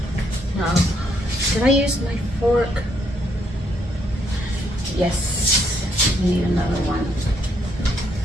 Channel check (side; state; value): both; normal; correlation 0.72